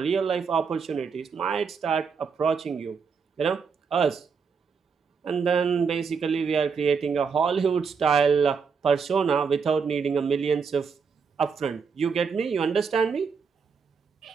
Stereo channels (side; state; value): left; quieter; 5.8 dB